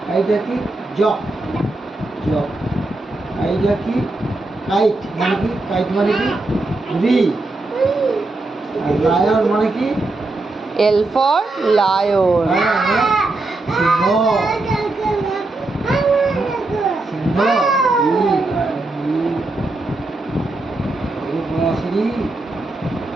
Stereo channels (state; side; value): quieter; left; 3.0 dB